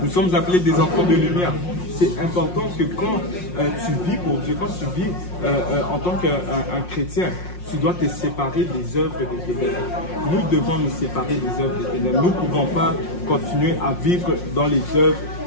Nous sommes appelés des enfants de lumière. C'est important que quand tu vis pour Dieu, quand tu vis en tant qu'un chrétien, tu dois te séparer des œuvres des ténèbres. Nous devons nous séparer des œuvres des ténèbres. Nous ne pouvons pas continuer à vivre dans les œuvres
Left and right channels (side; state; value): right; late; 5.6 ms